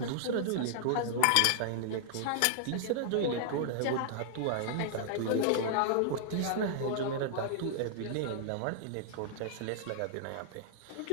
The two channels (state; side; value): different; both; correlation -0.01